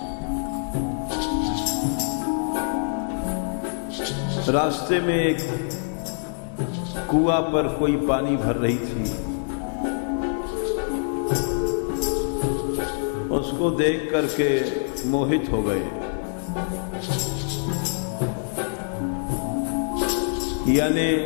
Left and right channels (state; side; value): silent; right; digital silence